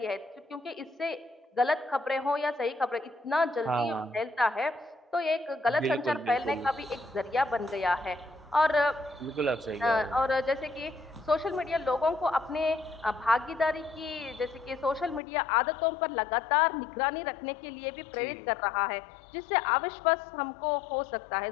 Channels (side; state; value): right; drops out; at 15.2 s